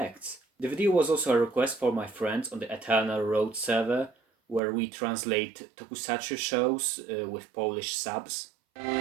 The video was also a request for my friends on the Eternal Road server, where we translate tokusatsu shows with Polish subs.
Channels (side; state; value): left; drops out; at 4.6 s